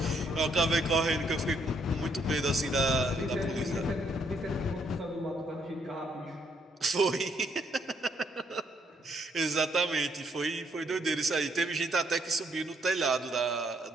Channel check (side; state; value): both; normal; correlation 0.71